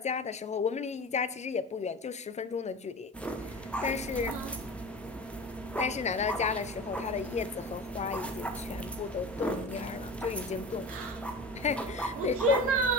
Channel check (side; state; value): both; normal; correlation 0.33